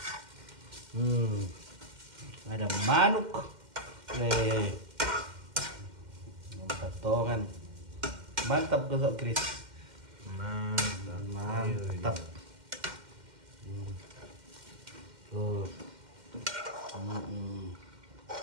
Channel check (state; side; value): late; left; 2.1 ms